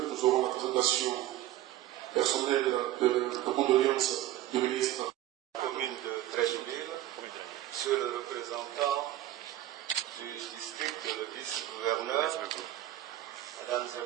nous aurons la présentation personnelle de condoléances du ministre. Commune de Trècheville, monsieur le représentant du district, le vice-gouverneur, mesdames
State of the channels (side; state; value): left; quieter; 14.0 dB